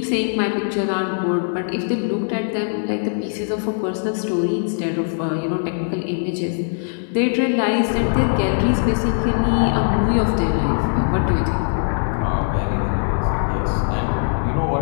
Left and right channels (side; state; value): right; silent; digital silence